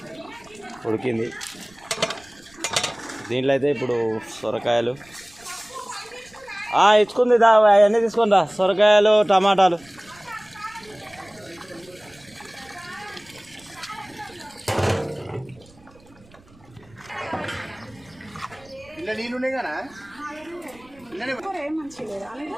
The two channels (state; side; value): noise; right; rumble, 27 dB below the sound